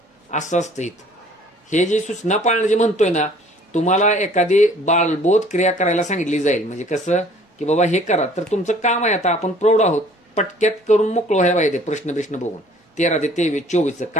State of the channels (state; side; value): normal; both; correlation 0.54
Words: असं असतं इथं. हे जे सूचना पाळणं जे म्हणतोय ना, तुम्हाला एखादी बालबोध क्रिया करायला सांगितली जाईल, म्हणजे कसं की बाबा हे करा, तर तुमचं काम आहे, आता आपण प्रौढ आहोत, पटक्यात करून मोकळं व्हायला पाहिजे. प्रश्न बघून 13 ते 23, 24